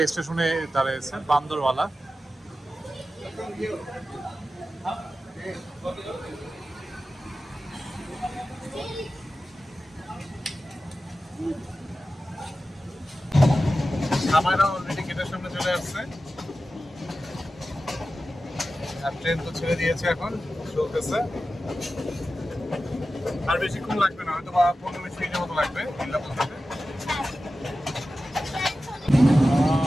স্টেশনে দাঁড়িয়েছে বান্দরওয়ালা। সামাইরা অলরেডি গেটের সামনে চলে আসছে, আর ট্রেন তো ছেড়ে দিয়েছে, এখন চলতেছে। আর বেশিক্ষণ লাগবে না, হয়তো বা 15-20 মিনিটের মতো লাগবে কিল্লা পৌঁছাতে।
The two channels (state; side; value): normal; both; correlation 0.93